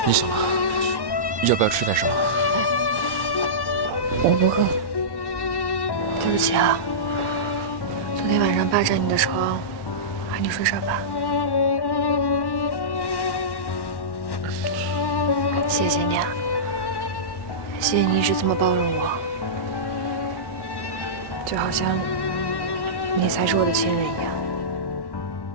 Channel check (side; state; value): right; late; 1.1 ms